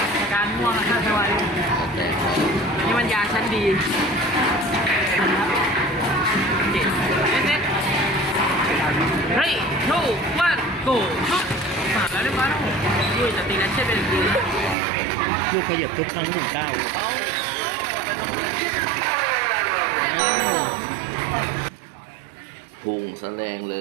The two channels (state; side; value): drops out; left; at 14.8 s